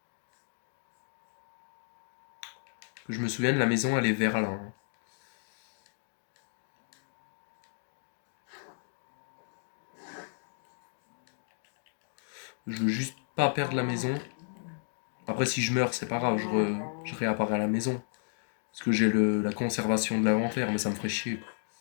Que je me souvienne, la maison, elle est vers là, hein. Je veux juste pas perdre la maison. Après, si je meurs, c'est pas grave, je réapparais à la maison. Parce que j'ai la conservation de l'inventaire, mais ça me ferait chier, quoi.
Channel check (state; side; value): silent; right; digital silence